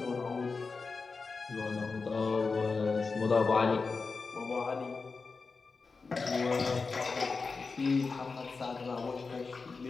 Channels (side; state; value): right; quieter; 4.4 dB